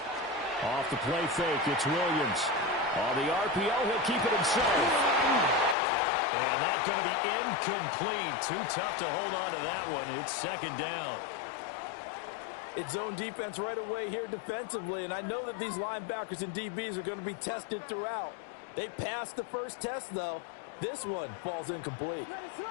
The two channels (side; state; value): right; drops out; at 5.8 s